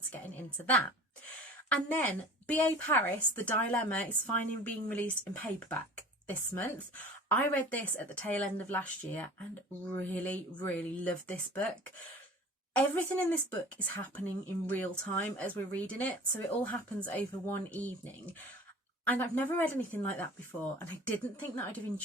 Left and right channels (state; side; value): normal; both; correlation 0.41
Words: to getting into that. And then B.A. Paris, The Dilemma, is finally being released in paperback this month. I read this at the tail end of last year and really, really loved this book. Everything in this book is happening in real time as we're reading it, so it all happens over one evening. And I've never read anything like that before, and I didn't think that I'd have